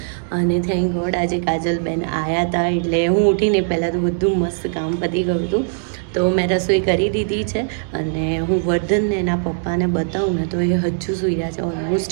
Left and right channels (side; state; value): left; silent; digital silence